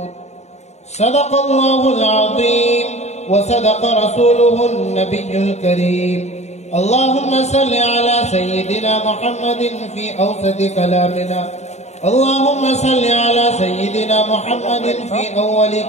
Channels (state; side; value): late; right; 0.32 ms